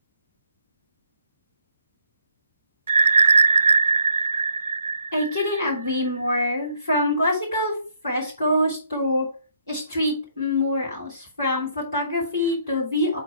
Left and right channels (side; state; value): both; inverted; correlation -0.71